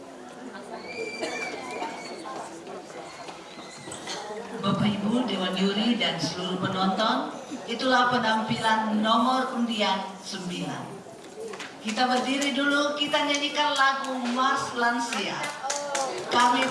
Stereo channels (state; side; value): identical; both; correlation 1.00